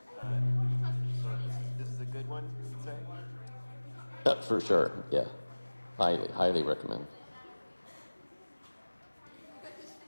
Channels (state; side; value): inverted; both; correlation -1.00